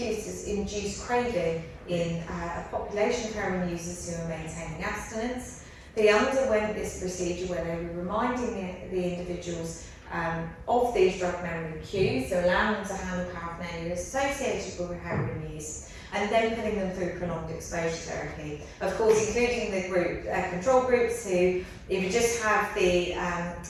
to induce craving in a population of heroin users who are maintaining abstinence. They underwent this procedure where they were reminding the individuals of these drug memory cues, so allowing them to handle paraphernalia associated with heroin use, and then putting them through prolonged exposure therapy. Of course, including the group control groups who either just have the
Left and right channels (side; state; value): both; identical; correlation 1.00